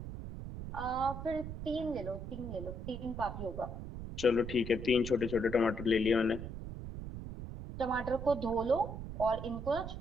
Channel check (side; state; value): right; noise; rumble, 8 dB below the sound